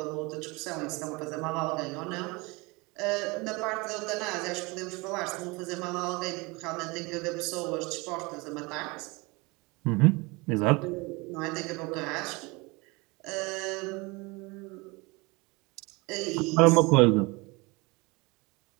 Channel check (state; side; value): quieter; left; 25.8 dB